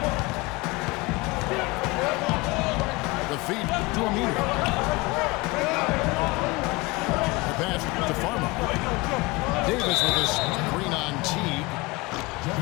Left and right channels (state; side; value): quieter; right; 23.8 dB